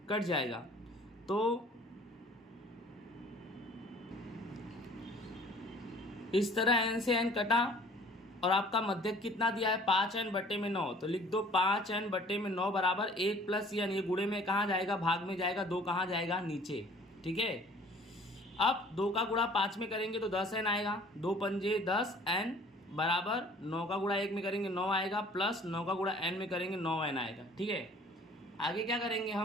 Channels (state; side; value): normal; both; correlation 0.52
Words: कट जाएगा। तो इस तरह n से n कटा, और आपका मध्यक कितना दिया है? 5n/9। तो लिख दो 5n/9 बराबर 1 + n। ये गुणे में कहाँ जाएगा? भाग में जाएगा। 2 कहाँ जाएगा? नीचे। ठीक है, अब 2 का गुणा 5 में करेंगे तो 10n आएगा। 2 पंजे 10n बराबर 9 का गुणा 1 में करेंगे 9 आएगा, प्लस 9 का गुणा n में करेंगे 9n आएगा। ठीक है, आगे क्या करेंगे